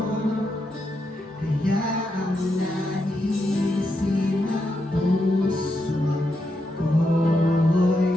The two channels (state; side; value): normal; both; correlation 0.83